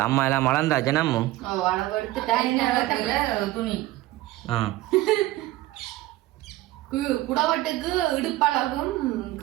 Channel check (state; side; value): quieter; left; 16.8 dB